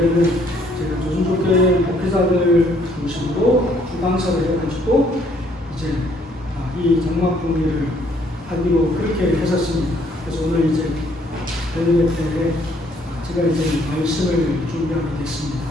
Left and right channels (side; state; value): both; normal; correlation 0.65